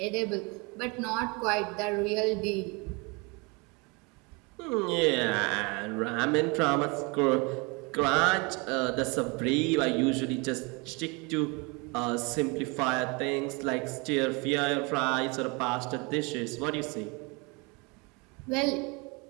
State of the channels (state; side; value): quieter; left; 28.8 dB